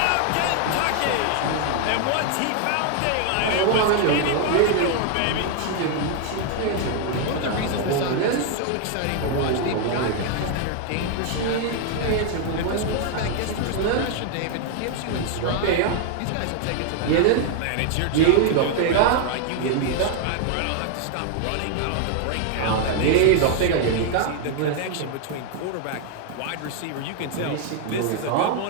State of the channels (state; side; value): different; both; correlation 0.00